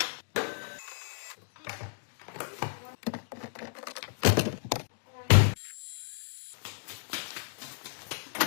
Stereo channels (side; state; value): right; silent; digital silence